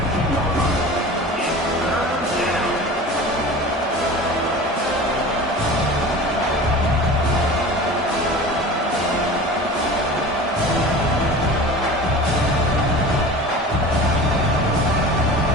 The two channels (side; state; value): both; normal; correlation 0.37